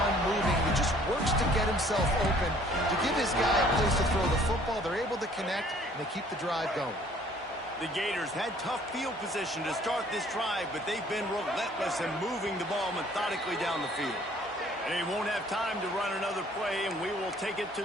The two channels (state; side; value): normal; both; correlation 0.57